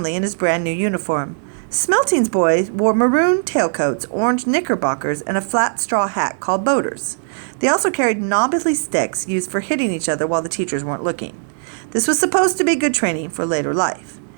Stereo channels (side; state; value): left; silent; digital silence